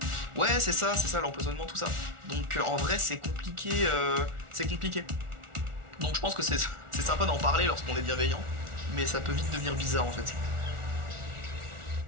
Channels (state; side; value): late; left; 1.4 ms